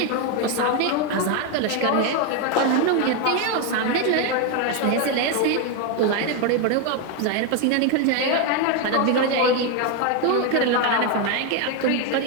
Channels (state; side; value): different; both; correlation 0.01